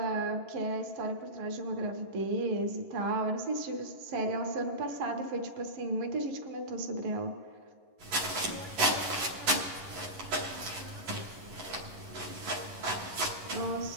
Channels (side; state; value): left; late; 11 ms